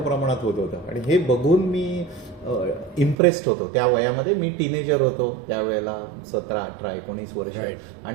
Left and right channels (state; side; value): drops out; left; at 3.2 s